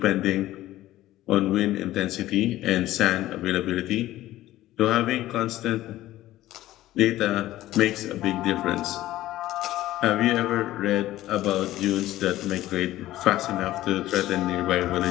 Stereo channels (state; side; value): quieter; right; 15.1 dB